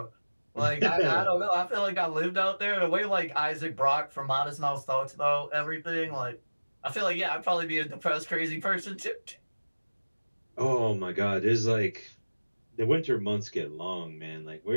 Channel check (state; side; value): inverted; both; correlation -1.00